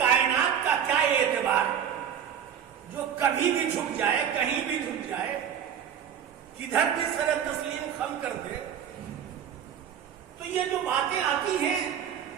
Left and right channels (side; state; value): left; quieter; 8.7 dB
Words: کا کیا اعتبار ہے جو کبھی بھی جھک جائے، کہیں بھی جھک جائے، کدھر بھی سر تسلیم خم کر دے۔ تو یہ جو باتیں آتی ہیں